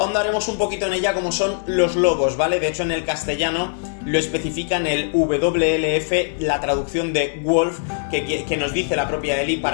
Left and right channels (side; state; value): right; silent; digital silence